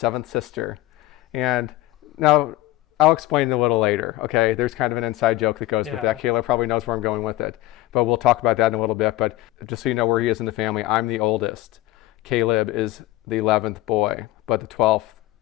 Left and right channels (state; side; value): quieter; right; 17.1 dB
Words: sister. And now I'll explain it a little later, okay? There's kind of an inside joke that goes with that. Caleb probably knows where I'm going with it, but we'll talk about that in a little bit. But just so you know where he is in the family, I'm the oldest. Caleb is the 11th boy, but the 12th